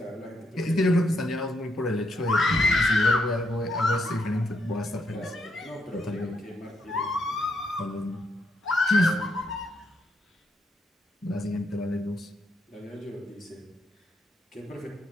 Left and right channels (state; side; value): normal; both; correlation 0.77